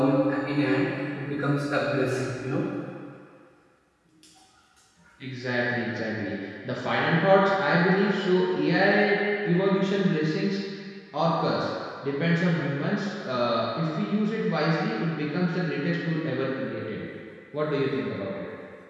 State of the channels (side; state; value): both; identical; correlation 1.00